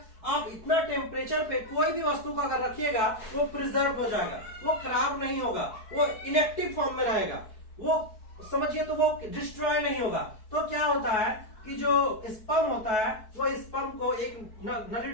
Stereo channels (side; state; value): right; late; 4.6 ms